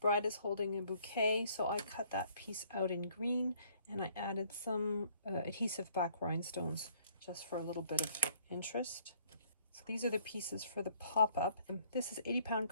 Bride is holding a bouquet, so I cut that piece out in green, and I added some adhesive back rhinestones just for a little bit of interest. So these are the pieces for the pop-up. This is 80-pound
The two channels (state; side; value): inverted; both; correlation -0.61